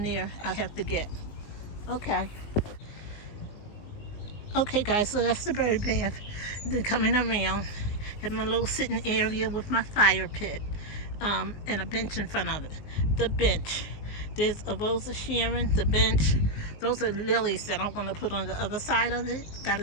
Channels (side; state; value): right; late; 19 ms